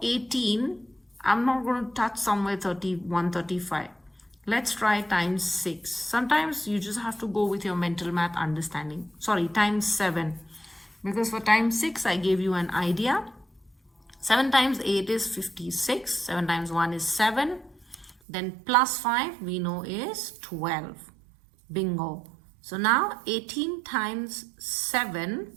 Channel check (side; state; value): left; drops out; at 18.2 s